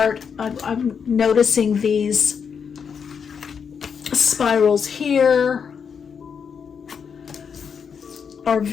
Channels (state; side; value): quieter; right; 6.6 dB